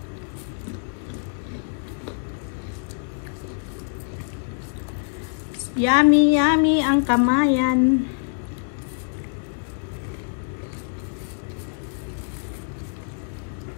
Yummy, yummy ang kamayan.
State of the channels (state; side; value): silent; right; digital silence